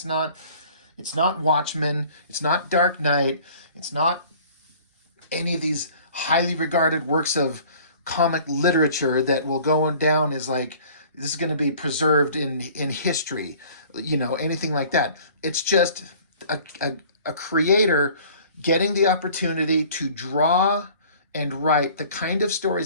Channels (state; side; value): inverted; both; correlation -0.50